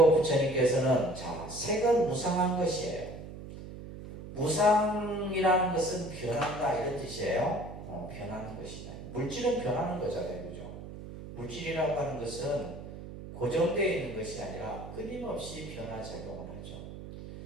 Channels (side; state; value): right; noise; hum, 12 dB below the sound